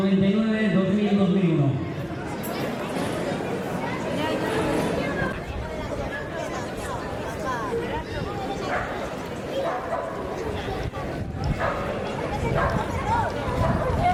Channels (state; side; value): identical; both; correlation 1.00